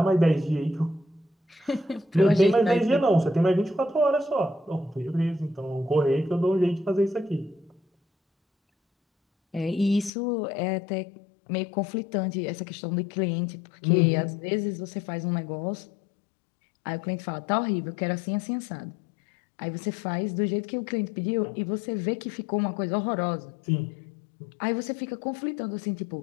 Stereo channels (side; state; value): right; drops out; at 10.1 s